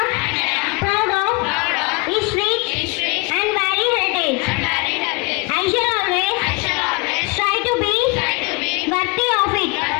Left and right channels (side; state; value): right; quieter; 28.6 dB